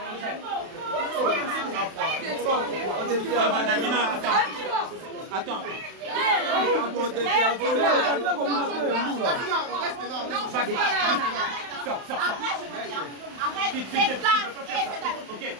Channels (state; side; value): late; left; 31 ms